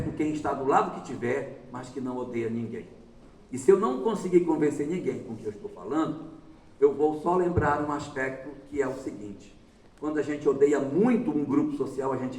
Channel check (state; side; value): identical; both; correlation 1.00